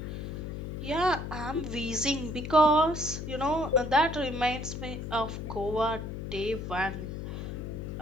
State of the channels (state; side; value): noise; left; hum, 6 dB below the sound